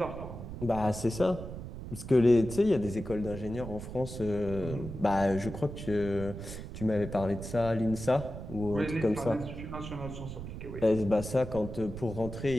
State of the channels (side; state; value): right; noise; rumble, 9 dB below the sound